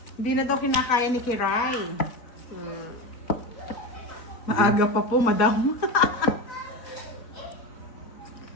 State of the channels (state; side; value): late; right; 4.0 ms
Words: Hindi na daw kinakaya ni Kiray. Maaga pa po, madam.